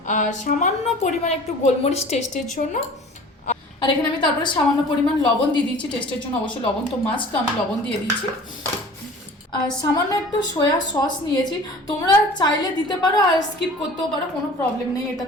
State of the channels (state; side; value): normal; both; correlation 0.44